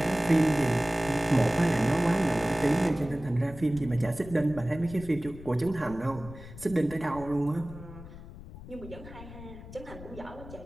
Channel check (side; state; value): left; noise; rumble, 15 dB below the sound